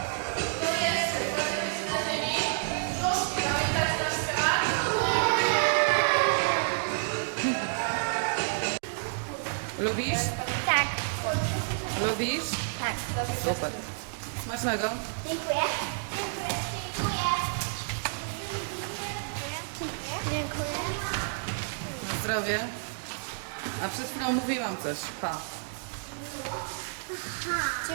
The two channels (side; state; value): left; silent; digital silence